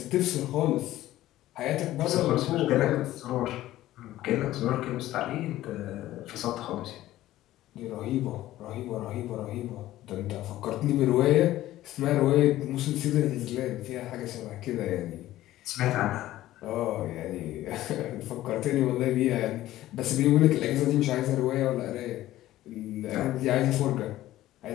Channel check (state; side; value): quieter; right; 14.9 dB